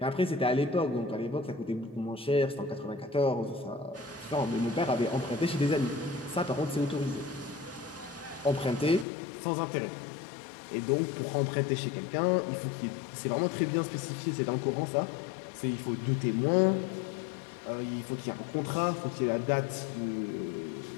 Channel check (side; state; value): right; drops out; at 9.1 s